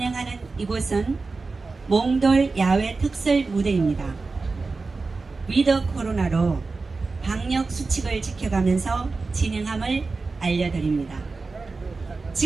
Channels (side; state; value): left; quieter; 4.0 dB